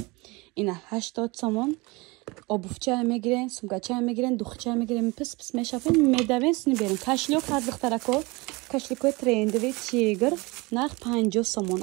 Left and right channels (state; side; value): quieter; left; 24.8 dB